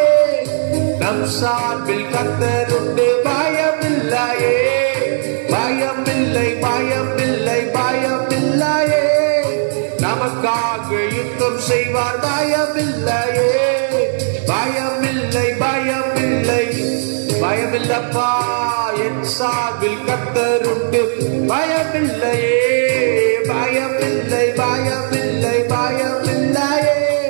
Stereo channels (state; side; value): silent; left; 63 dB below the other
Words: நம் சார்பில் கர்த்தர் உண்டு. பயமில்லையே பயமில்லை பயமில்லை பயமில்லையே, நமக்காக யுத்தம் செய்வார். பயமில்லையே பயமில்லை பயமில்லை பயமில்லப்பா, என் சார்பில் கர்த்தர் உண்டு. பயமில்லையே பயமில்லை பயமில்லை பயமில்லையே,